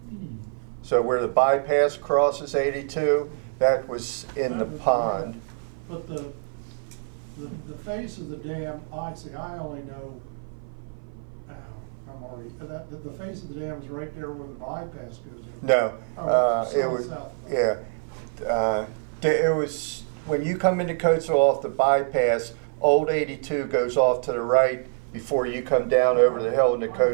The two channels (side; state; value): left; silent; 55 dB below the other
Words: So where the bypass crosses 82, that was in the pond. But the face of the dam, I only know, I'm already, the face of the dam is right there where the bypass goes in. No, it south, was, south. yeah. It was, when you come into Coatesville off the bypass, Old 82 goes off to the right before you come down over the hill into Been